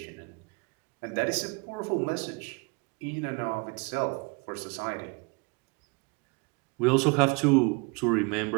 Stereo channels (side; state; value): left; quieter; 29.2 dB